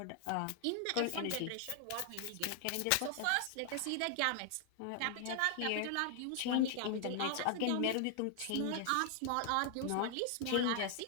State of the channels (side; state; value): both; different; correlation 0.00